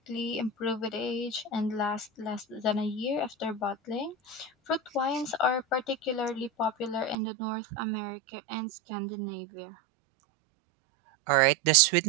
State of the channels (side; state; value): left; drops out; at 7.2 s